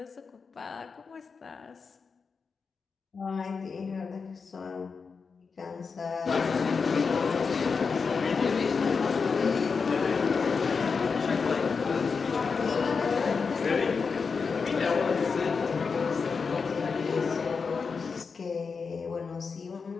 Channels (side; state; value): right; quieter; 5.2 dB